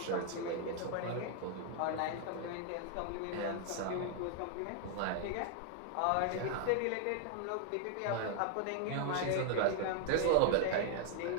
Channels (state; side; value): different; both; correlation 0.00